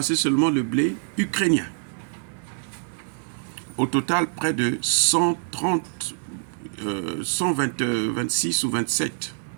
seulement le blé ukrainien. Au total, près de 26 ou 27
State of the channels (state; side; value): silent; left; digital silence